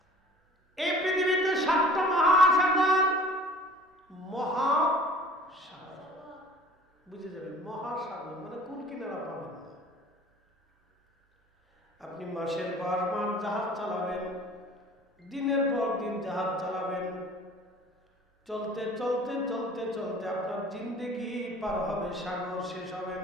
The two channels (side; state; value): both; normal; correlation 0.47